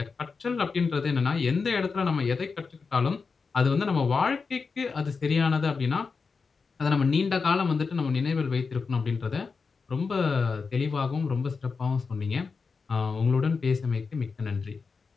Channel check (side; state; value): right; quieter; 4.9 dB